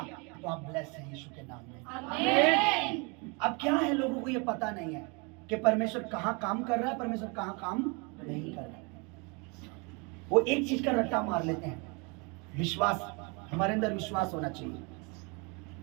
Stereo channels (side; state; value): left; quieter; 31.2 dB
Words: तो आप ब्लेस हैं यीशु के नाम में। आमीन। अब क्या है, लोगों को ये पता नहीं है कि परमेश्वर कहां काम कर रहा है, परमेश्वर कहां काम नहीं कर रहा है। वो एक चीज का रट्टा मार लेते हैं, विश्वास। हमारे अंदर विश्वास होना चाहिए,